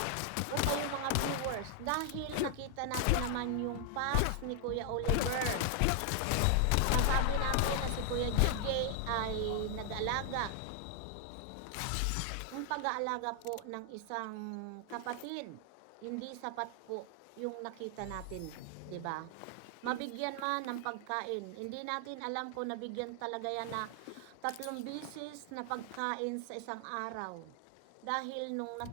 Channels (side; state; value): both; different; correlation 0.00